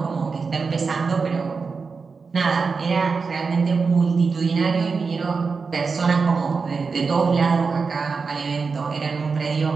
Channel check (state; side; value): quieter; left; 4.8 dB